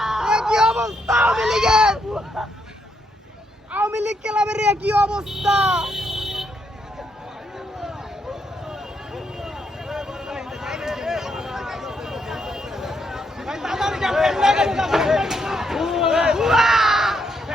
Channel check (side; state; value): both; normal; correlation 0.77